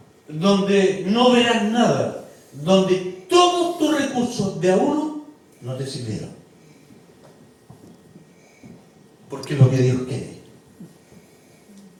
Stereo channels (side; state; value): both; identical; correlation 1.00